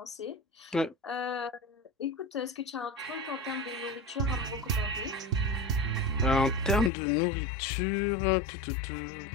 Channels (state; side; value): drops out; right; at 6.9 s